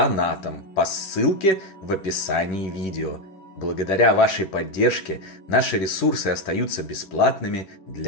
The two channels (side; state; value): right; late; 11 ms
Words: по ссылке в описании видео. Благодаря вашей поддержке наши ресурсы остаются бесплатными